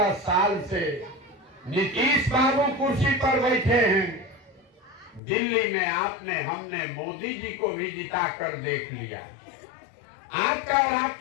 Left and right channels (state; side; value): drops out; right; at 5.2 s